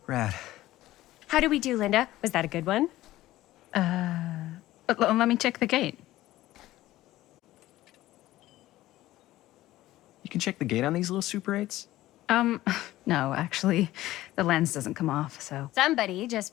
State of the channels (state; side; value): quieter; right; 15.9 dB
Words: Rad. How do we do, Linda? Was that a good one? Let me check the gate. You can check the gate on these little Super 8s? No, actually, the lens doesn't come off, so. Somebody